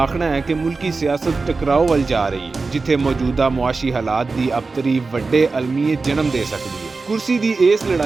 आखना है कि मुल्की सियासत टकराव वल जा रही है, जिथे मौजूदा मुआशी हालात की अबतरी वड्डे अलमीयत जन्म दे सकती है। कुर्सी की इस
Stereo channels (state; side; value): quieter; left; 4.0 dB